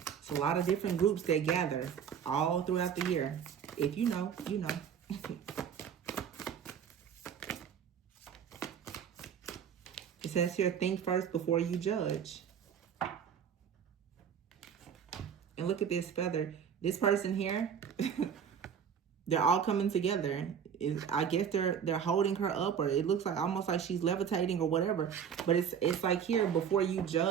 It's a lot of different groups that gather all throughout the year. If you know, you know. It says here, think first before you judge. look at this feather. This person here, they're all coming together. I guess they're holding her up, or it looks like almost like she's levitating or whatever. But it's like here, before you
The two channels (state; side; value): quieter; left; 7.8 dB